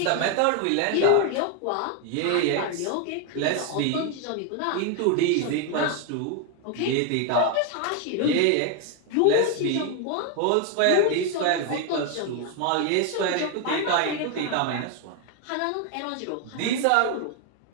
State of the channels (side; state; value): both; different; correlation 0.01